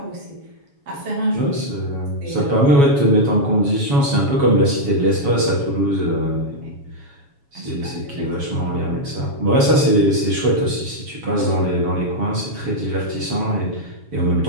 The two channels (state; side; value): late; left; 7.1 ms